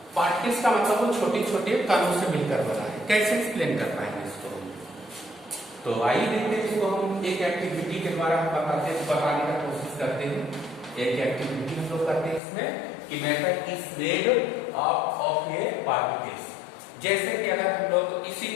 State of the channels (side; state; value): right; drops out; at 12.4 s